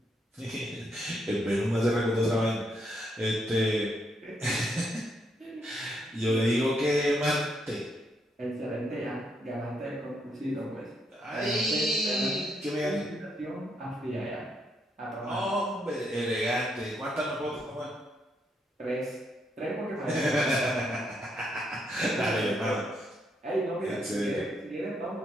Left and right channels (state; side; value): normal; both; correlation 0.76